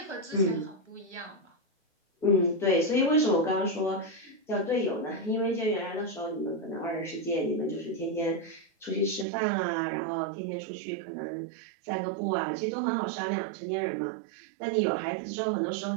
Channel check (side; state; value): left; drops out; at 9.2 s